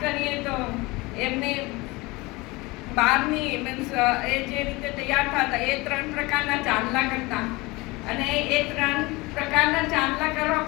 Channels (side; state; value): right; quieter; 23.2 dB